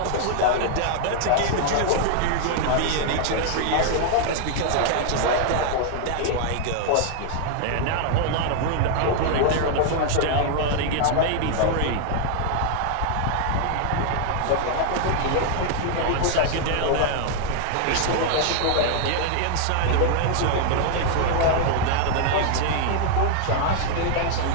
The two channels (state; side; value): different; both; correlation 0.00